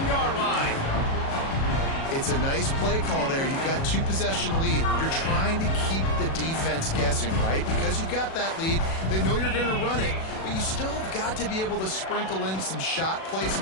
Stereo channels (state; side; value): late; right; 37 ms